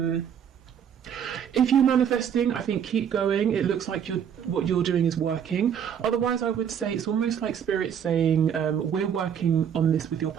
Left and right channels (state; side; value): quieter; left; 8.4 dB